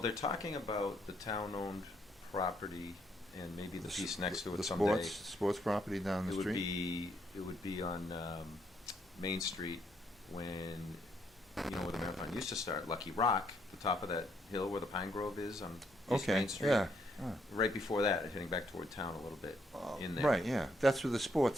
they're talking about the town-owned property and maybe the piece next to it the someday. sports property down the It would street? be on Main Street when where the marathon used to start, Lucky Rock, the top of that hill where the Pine Grove is on East Okay, Main Street. yeah. Right before that, heading back toward town a little bit in there. Right, yeah. That's where the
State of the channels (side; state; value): both; normal; correlation 0.73